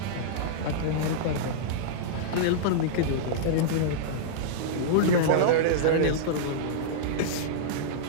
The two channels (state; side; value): different; both; correlation -0.03